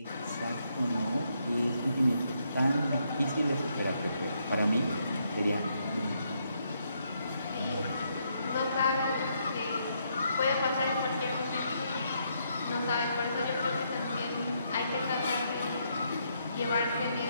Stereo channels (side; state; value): both; inverted; correlation -0.76